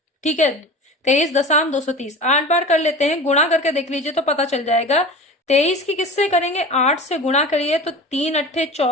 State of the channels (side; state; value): both; normal; correlation 0.35